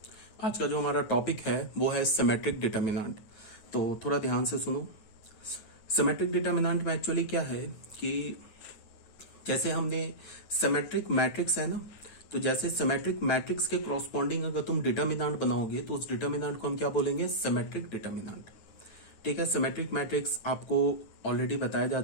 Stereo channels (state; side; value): late; right; 9.5 ms